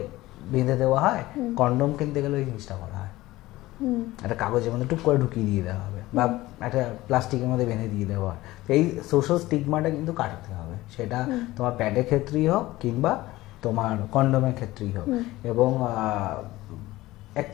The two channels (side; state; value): right; quieter; 17.8 dB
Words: বেঁধে দেওয়া হয়, কন্ডোম কিনতে গেলে ওই জিনিসটা করা হয়, একটা কাগজের মধ্যে টুক করে ঢুকিয়ে দিয়ে দেওয়া হবে বা একটা প্লাস্টিকের মধ্যে বেঁধে দিয়ে দেওয়া হয়। তো এই সোশ্যাল স্টিগমাটা কিন্তু কাটাতে হবে, সেটা তোমার প্যাডের ক্ষেত্রেই হোক কিংবা তোমার কন্ডোমের ক্ষেত্রেই হোক। এবং